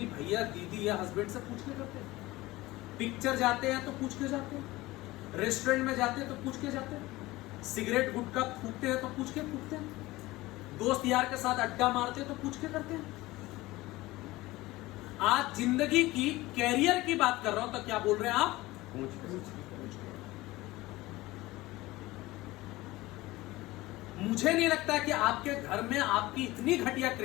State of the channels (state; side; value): quieter; right; 19.2 dB